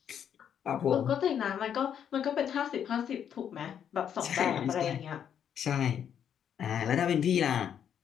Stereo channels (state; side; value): quieter; right; 8.8 dB